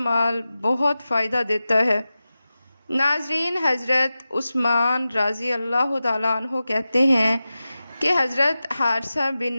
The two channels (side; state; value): both; inverted; correlation -0.94